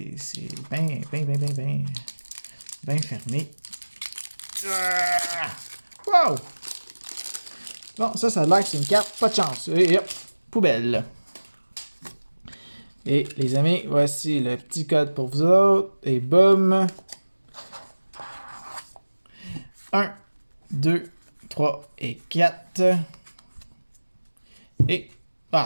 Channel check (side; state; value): both; inverted; correlation -1.00